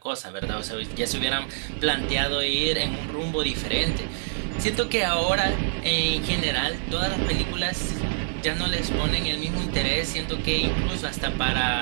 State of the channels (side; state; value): left; silent; 61 dB below the other